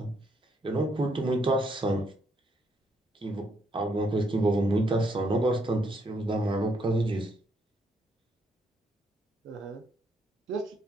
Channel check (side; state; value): both; normal; correlation 0.74